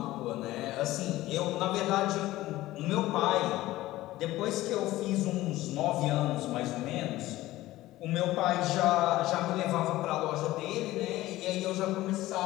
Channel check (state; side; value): quieter; right; 16.6 dB